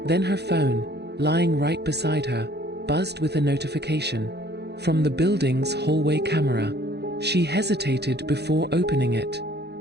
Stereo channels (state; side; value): late; left; 0.48 ms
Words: Then her phone, lying right beside her, buzzed with a notification. From the building's hallway camera. She hesitated before opening it.